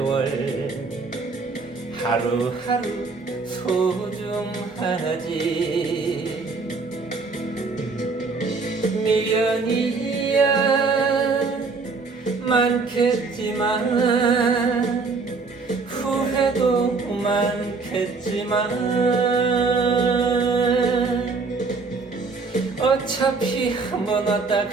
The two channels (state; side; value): quieter; left; 4.3 dB